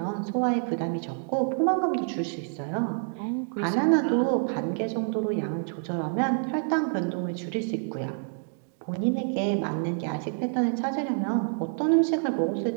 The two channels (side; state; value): left; silent; 60 dB below the other